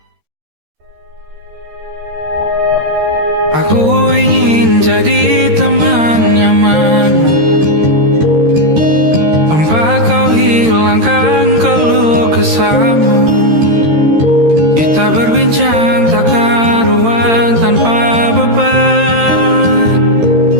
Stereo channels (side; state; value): left; late; 13 ms